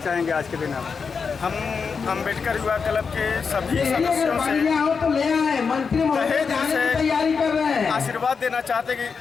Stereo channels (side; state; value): right; quieter; 5.5 dB